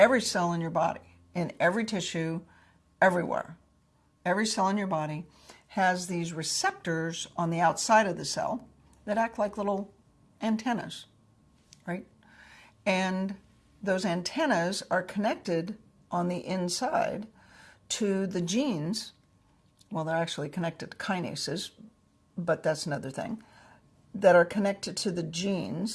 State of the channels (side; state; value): both; identical; correlation 1.00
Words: cell in your body, in every tissue, everywhere, every cell in your body has these receptors on the outside of the cell that act like little antennas, right? And those antennas are connected on the inside to the genes. Well, they're actually connected to kinases, but that's another thing, that are connected to the